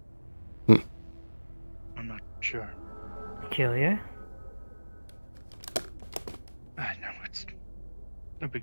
Hmm. I'm not sure. Peculiar. No, it's no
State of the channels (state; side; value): inverted; both; correlation -1.00